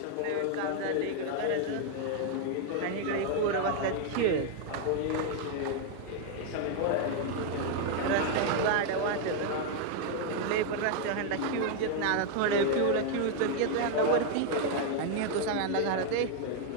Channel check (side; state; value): both; different; correlation 0.00